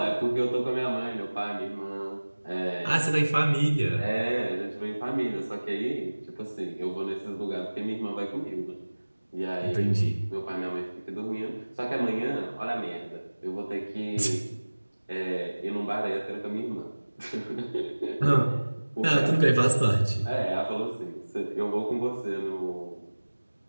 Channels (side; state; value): both; inverted; correlation -1.00